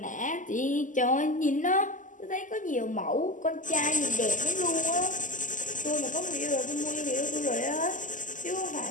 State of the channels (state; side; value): late; right; 0.37 ms